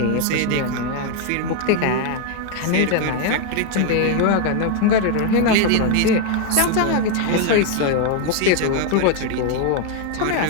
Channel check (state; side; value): different; both; correlation 0.01